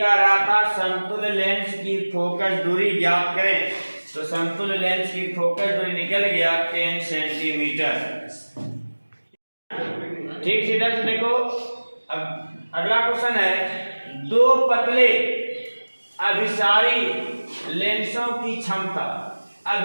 रहा था समतुल्य लेंस की फोकस दूरी ज्ञात करें, तो समतुल्य लेंस की फोकस दूरी निकल गया 10 सेंटीमीटर। ठीक सीधा से देखो। अब अगला क्वेश्चन है, दो पतले अभिसारी लेंसों की क्षमता।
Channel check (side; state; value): both; inverted; correlation -1.00